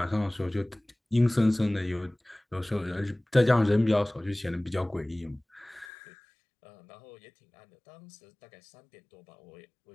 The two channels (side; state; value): right; drops out; at 5.9 s